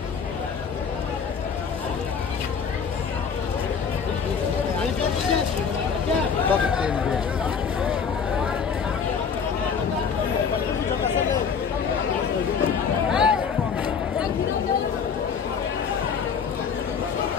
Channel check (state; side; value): quieter; right; 6.4 dB